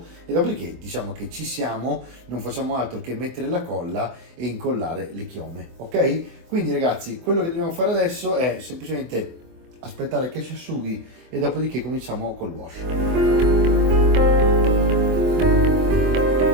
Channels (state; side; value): late; left; 23 ms